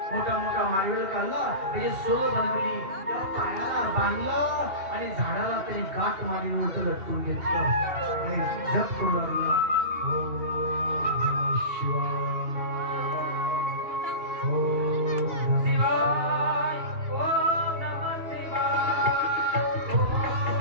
मोठा मोठा माडगळ काढला, त्याची सोल बनवली, त्या पायाला बांधलं आणि झाडाला तरी गाठ मारी उलट लटकून घेतलं आणि जप करू लागला.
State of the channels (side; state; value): left; late; 2.9 ms